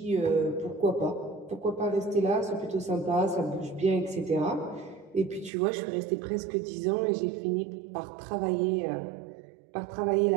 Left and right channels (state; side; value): drops out; left; at 5.5 s